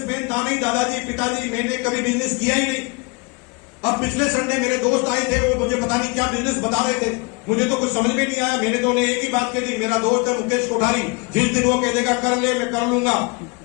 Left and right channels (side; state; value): right; quieter; 29.8 dB